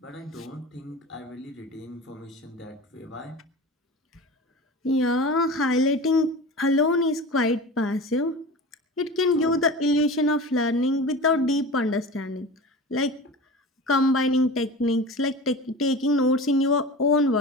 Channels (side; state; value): both; normal; correlation 0.33